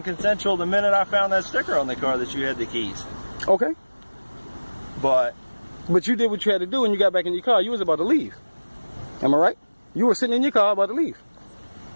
consensual the minute I found that sticker on the car that you had the keys. Okay. But you did what you had to do when you got back in your car. You was about to leave. Am I right? You were sitting in your car about to leave.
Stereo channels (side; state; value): both; inverted; correlation -1.00